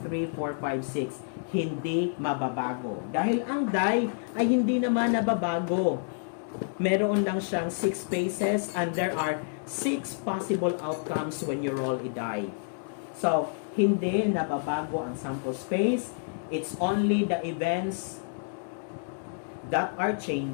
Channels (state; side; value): silent; right; digital silence